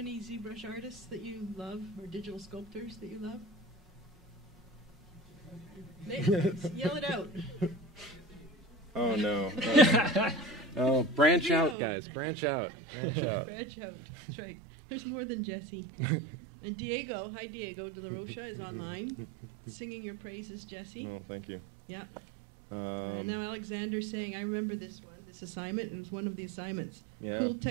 ZBrush artists that you love, or digital sculptors that you love? Yell it out. Oh no! Oh, branch out, guys! Branch out! Branch out! Branch out. That's right. There's more than Jesse. And Diego, hi Diego de la Rocha, is online, singing your praises, Jesse. Oh, thank you. Yeah. And now Alexander's saying, I remember this assignment. It was one of the assignments. Yeah. Cool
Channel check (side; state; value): left; drops out; at 11.8 s